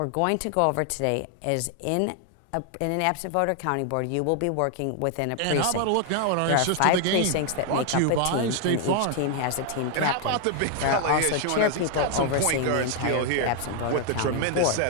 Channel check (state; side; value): different; both; correlation 0.00